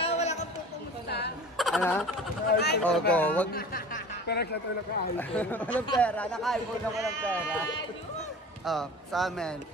wala kang pupumusta. Ano? O, go. Wag. Pero siya tayo naka-iPhone. Walang pera. Naka-iPhone na walang pera. Oh, sa amin.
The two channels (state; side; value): normal; both; correlation 0.39